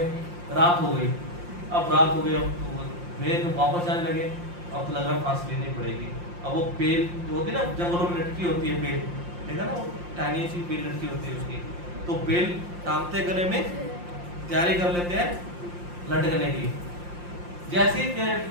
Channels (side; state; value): left; late; 5.7 ms